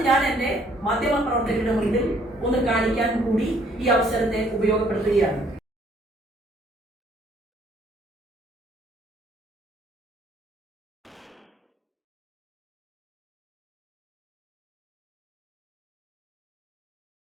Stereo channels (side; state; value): both; normal; correlation 0.63